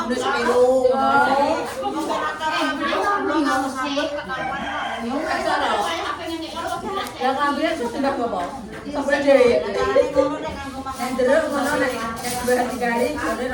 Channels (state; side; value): identical; both; correlation 1.00